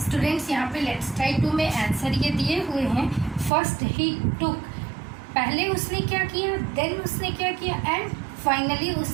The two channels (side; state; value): left; drops out; at 3.5 s